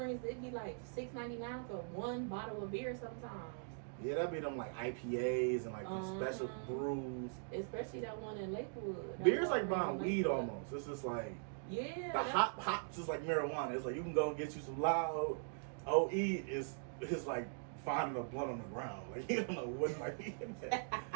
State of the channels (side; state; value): left; silent; digital silence